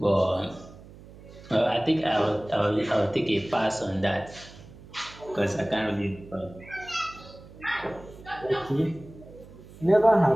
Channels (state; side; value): noise; right; hum, 19 dB below the sound